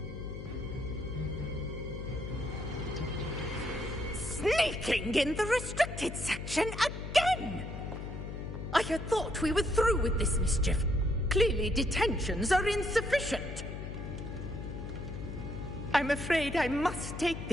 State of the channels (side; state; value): left; noise; hum, 7 dB below the sound